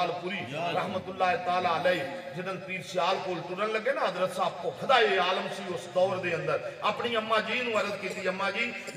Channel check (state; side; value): identical; both; correlation 1.00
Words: پوری رحمت اللہ تعالی علیہ جنن پیر سیال کول ٹرن لگے نا حضرت صاحب کو خدائے عالم سی اس دور دے اندر اپنی اماں جی نو عرض کیتی اماں جی